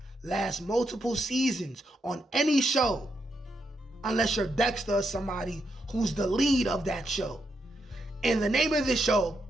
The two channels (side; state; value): both; normal; correlation 0.81